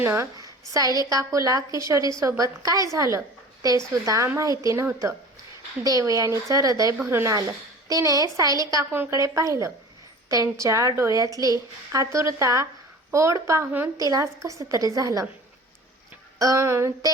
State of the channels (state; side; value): normal; both; correlation 0.40